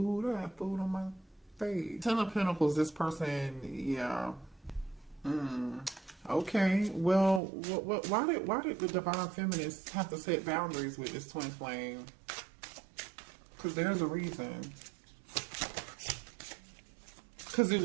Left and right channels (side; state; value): left; drops out; at 7.4 s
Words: I have food on my face. Ten of Pentacles, this person, yeah. Okay, well, why did the Divine Feminists have to set boundaries with this twin flame? Because there's a reason. Because it